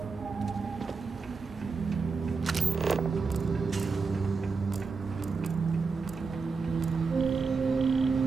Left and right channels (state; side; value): quieter; left; 4.7 dB